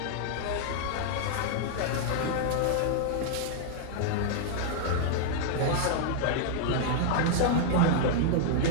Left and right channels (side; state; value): both; different; correlation -0.01